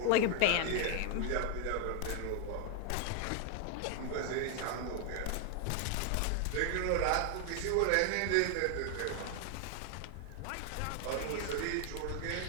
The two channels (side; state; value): both; different; correlation 0.00